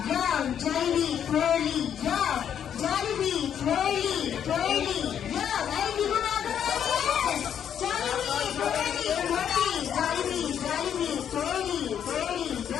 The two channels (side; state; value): right; quieter; 8.9 dB